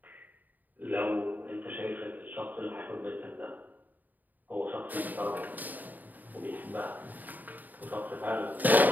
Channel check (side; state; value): left; late; 0.085 ms